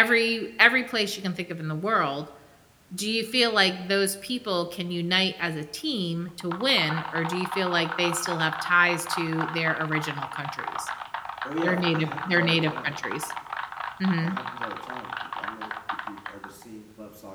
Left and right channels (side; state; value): both; identical; correlation 1.00